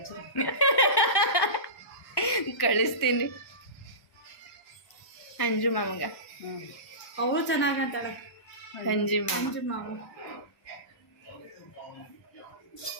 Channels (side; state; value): right; late; 1.1 ms